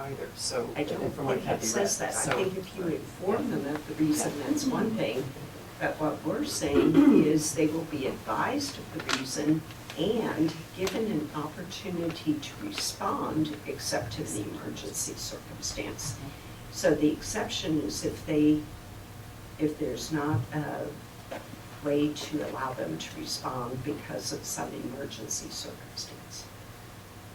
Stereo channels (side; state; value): both; identical; correlation 1.00